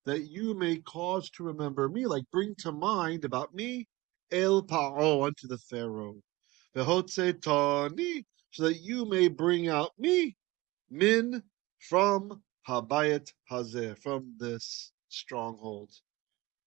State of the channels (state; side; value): quieter; left; 20.8 dB